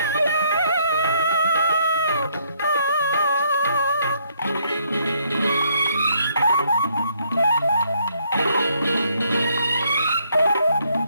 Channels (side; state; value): both; inverted; correlation -0.69